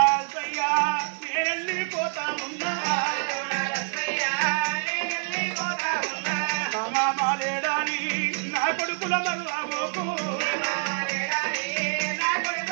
సయ్యా నేనెళ్ళిపోతా ఉన్నా. మామా మాలేడాని నా కొడుకుల మరువబోకు.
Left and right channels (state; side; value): silent; left; 55 dB below the other